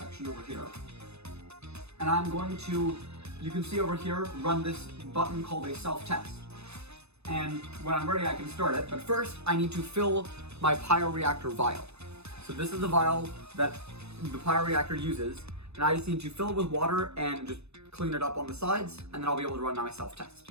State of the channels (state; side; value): late; left; 0.80 ms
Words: over here, and I'm going to, you can see over here, run this button called a self-test. And when I'm ready, I can start it, but first I need to fill my Pioreactor vial. So this is the vial that the Pioreactor uses, and I just need to fill it with water and just clean it up on the sides, and then I'll be able to run my self-test.